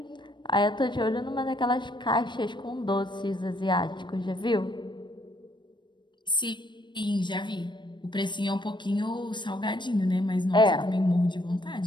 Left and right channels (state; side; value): late; right; 0.22 ms